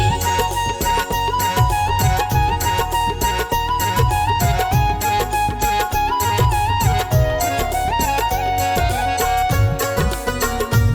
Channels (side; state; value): both; identical; correlation 1.00